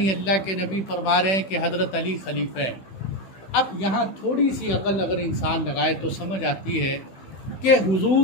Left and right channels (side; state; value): right; late; 16 ms